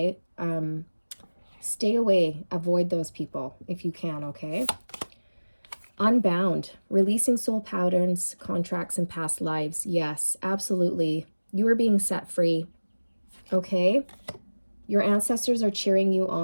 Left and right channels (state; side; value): inverted; both; correlation -1.00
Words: Stay away, avoid those people if you can, okay? Unbound, releasing soul patterns, contracts, and past lives. Yes, absolutely. You are being set free, okay? Your ancestors are cheering you